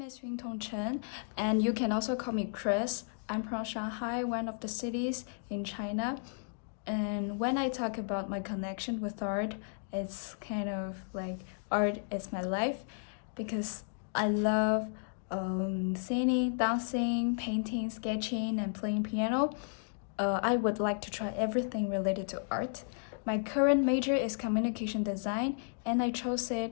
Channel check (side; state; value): right; silent; digital silence